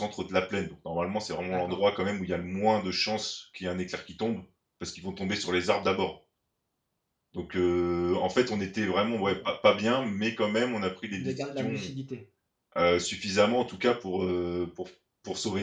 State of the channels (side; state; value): both; identical; correlation 1.00